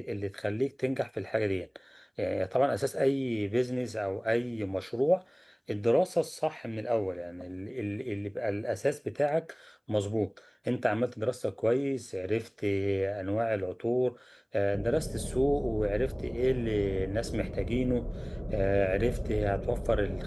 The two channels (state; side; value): identical; both; correlation 1.00